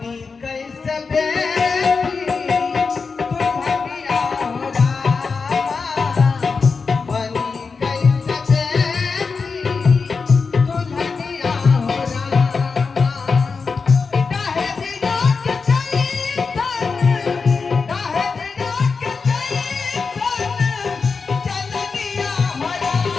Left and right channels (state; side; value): quieter; right; 4.8 dB